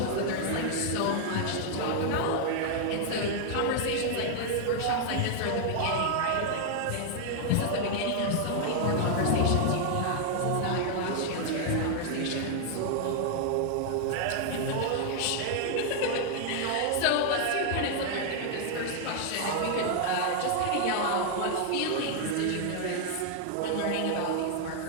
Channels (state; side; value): different; both; correlation 0.00